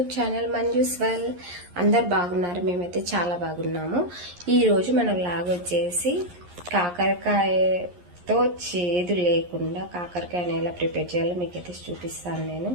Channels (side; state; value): left; late; 11 ms